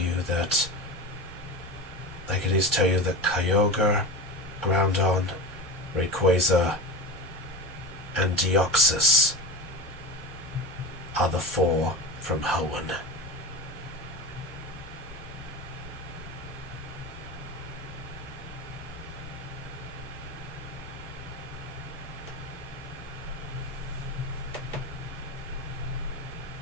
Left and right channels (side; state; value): both; normal; correlation 0.28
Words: that Kyogre, Groudon, Rayquaza, and Deoxys are the 4 from Hoenn.